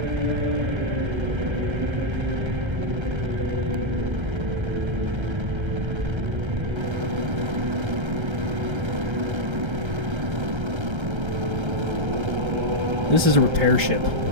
This is a repair ship.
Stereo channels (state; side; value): late; left; 1.3 ms